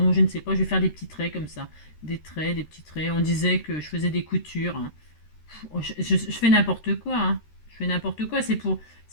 je ne sais pas. Je vais faire des petits traits comme ça. Des traits, des petits traits. On disait que je faisais des coutures. Hein. Je fais n'importe quoi. Hein. N'importe quoi, c'est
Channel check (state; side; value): late; right; 13 ms